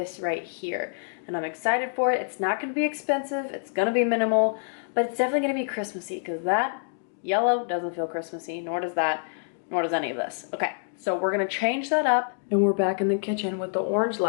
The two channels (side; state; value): right; silent; digital silence